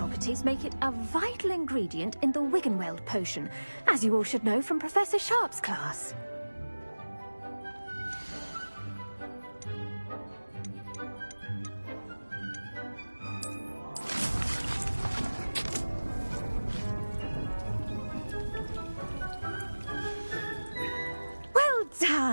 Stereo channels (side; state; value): both; inverted; correlation -1.00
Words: make it a vital ingredient in the Wiggenweld potion, as you all should know from Professor Sharp's class. Well